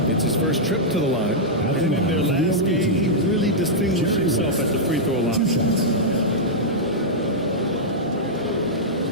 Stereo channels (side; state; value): both; normal; correlation -0.08